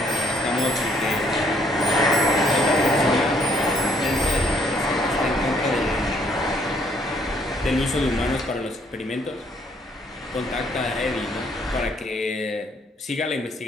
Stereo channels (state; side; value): normal; both; correlation 0.66